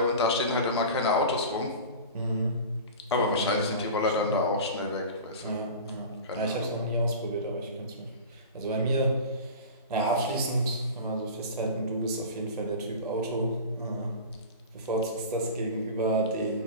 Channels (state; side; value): inverted; both; correlation -0.33